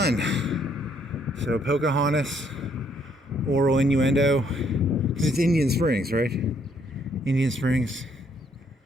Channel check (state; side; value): normal; both; correlation 0.68